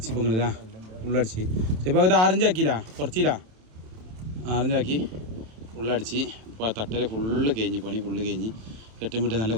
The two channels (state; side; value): late; left; 27 ms